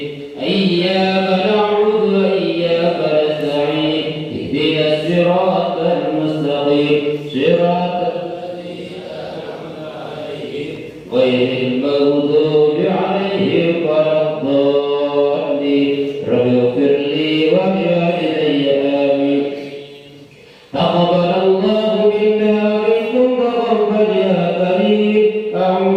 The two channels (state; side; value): identical; both; correlation 1.00